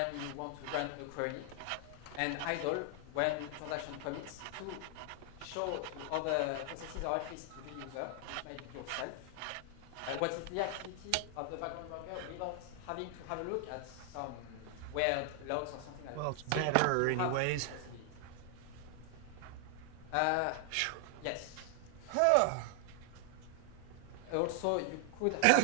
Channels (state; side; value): different; both; correlation 0.00